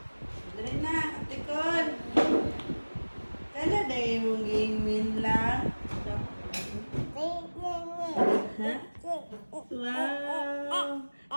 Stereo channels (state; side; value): inverted; both; correlation -1.00